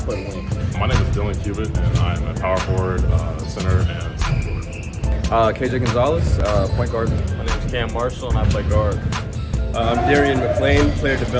play the wing. My name is Dylan Cubitt, and I'm a power forward, center, and forward. KJ Gonzalez, point guard. My name is Cam Marshall, and I play guard. I'm Darian McLean, player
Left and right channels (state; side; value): identical; both; correlation 1.00